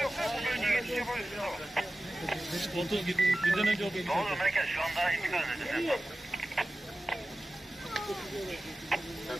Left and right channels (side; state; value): both; normal; correlation 0.95